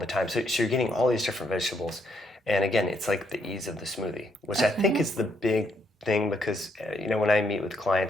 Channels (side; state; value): both; normal; correlation 0.74